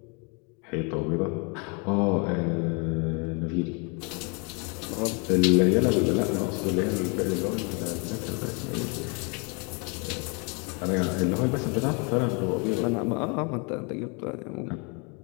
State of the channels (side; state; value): right; quieter; 33.5 dB